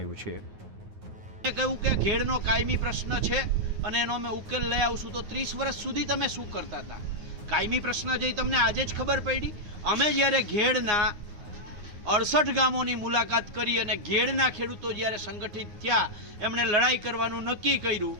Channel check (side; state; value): left; late; 9.5 ms